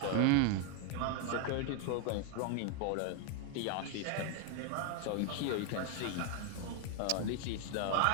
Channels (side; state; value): both; different; correlation 0.01